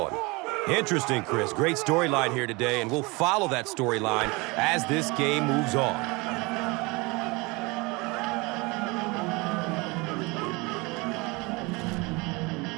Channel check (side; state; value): left; quieter; 25.8 dB